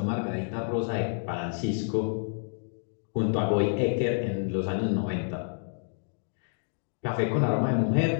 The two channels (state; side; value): silent; right; digital silence